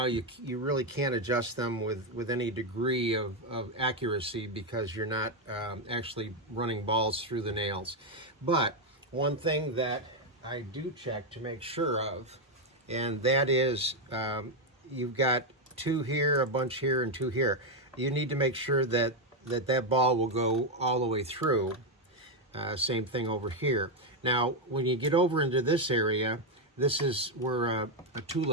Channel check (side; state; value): both; normal; correlation 0.04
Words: you really can't adjust them with any degree of accuracy because you're not actually running balls through the nails. But one thing that I do check to make sure of, and that is you've got 2 here, a bunch here, and 2 here. You need to make sure that that ball will go all the way through. Same thing over here. Now, when you get over into this area, this is where a